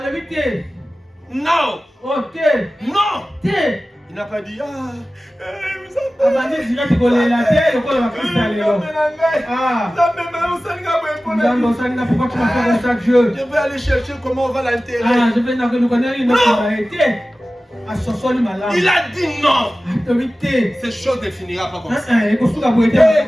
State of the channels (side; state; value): both; normal; correlation 0.96